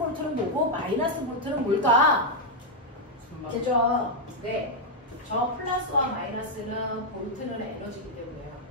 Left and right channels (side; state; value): both; normal; correlation -0.02